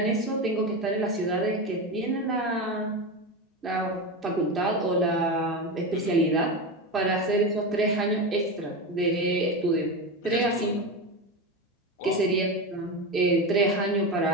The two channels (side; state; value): both; normal; correlation 0.19